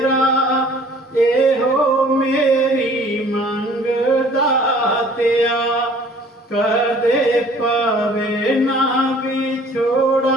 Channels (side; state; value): both; normal; correlation 0.53